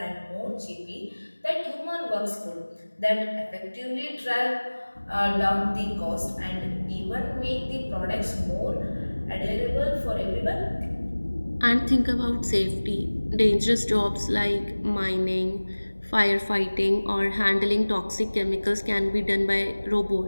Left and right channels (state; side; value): inverted; both; correlation -1.00